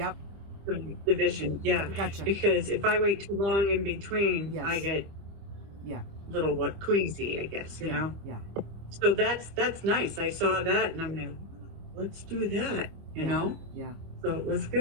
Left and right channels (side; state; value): left; late; 25 ms